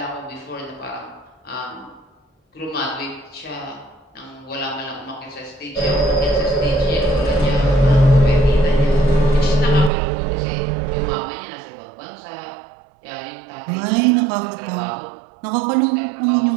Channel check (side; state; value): left; drops out; at 9.9 s